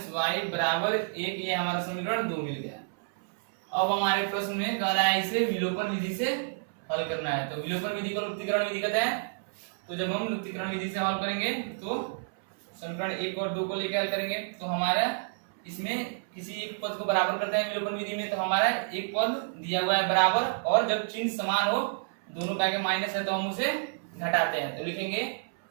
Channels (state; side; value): silent; left; 58 dB below the other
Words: वाई बराबर 1। ये हमारा समीकरण 2 मिल गया। अब हमारे प्रश्न में कह रहा है इसे विलोपन विधि से हल करना है। तो विलोपन विधि को लुप्तीकरण विधि कहते हैं। तो जब हम लुप्तीकरण विधि से हल करेंगे तो समीकरण 1 और 2 को लेकर हल करेंगे तो हमारा इसमें किसी एक पद को बराबर करते हैं विलोपन विधि में। तो हमारा एक पद दिया हुआ है बराबर, और जब चिन्ह समान हो, दोनों का माइनस है तो हम उसे घटाते हैं। तो लिखेंगे